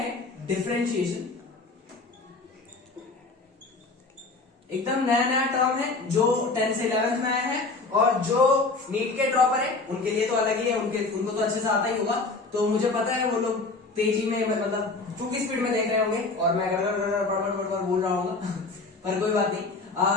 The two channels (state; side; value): quieter; right; 3.6 dB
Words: डिफरेंशिएशन। एकदम नया नया टर्म है जो 10th से 11th में आया है, और जो नीट के ड्रॉपर है उनके लिए तो अलग ही है, उनको तो अच्छे से आता ही होगा। तो मुझे पता है वो लोग तेजी में मतलब चूंकि स्पीड में देख रहे होंगे और मैं बड़बड़ बोल रहा हूँ पर कोई बात